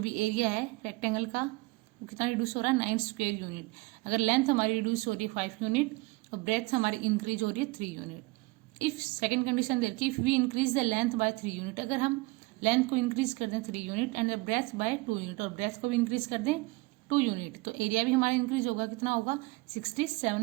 area है rectangle का, वो कितना reduce हो रहा है, 9 स्क्वायर यूनिट। अगर लेंथ हमारी रिड्यूस हो रही है 5 यूनिट और ब्रेथ हमारी इंक्रीज हो रही है 3 यूनिट। इफ सेकेंड कंडीशन दे रखी, if we increase the length by 3 unit, अगर हम लेंथ को इंक्रीज कर दें 3 unit and the breadth by 2 unit, और ब्रेथ को भी इंक्रीज कर दें 2 यूनिट, तो एरिया भी हमारा इंक्रीज होगा, कितना होगा,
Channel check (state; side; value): quieter; left; 23.9 dB